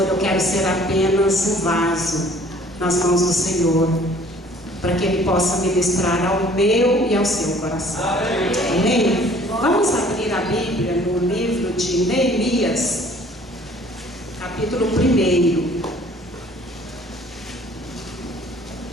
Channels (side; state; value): both; normal; correlation 0.54